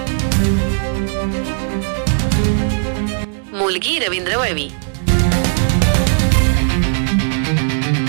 मुलगी रवींद्र वळवी।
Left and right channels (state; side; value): silent; left; digital silence